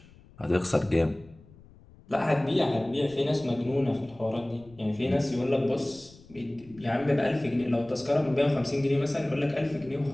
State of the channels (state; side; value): noise; left; rumble, 24 dB below the sound